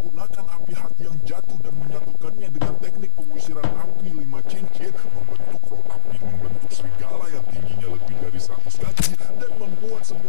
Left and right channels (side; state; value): both; different; correlation 0.01